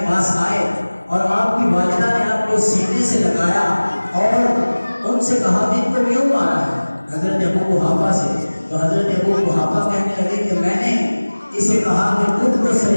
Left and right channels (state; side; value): inverted; both; correlation -1.00